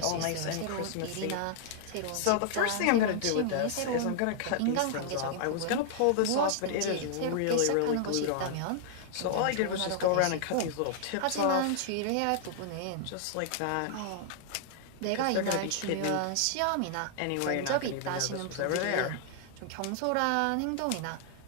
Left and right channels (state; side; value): different; both; correlation -0.01